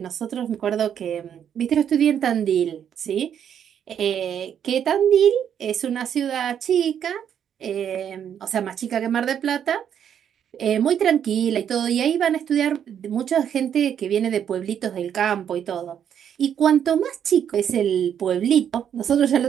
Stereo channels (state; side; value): quieter; left; 8.9 dB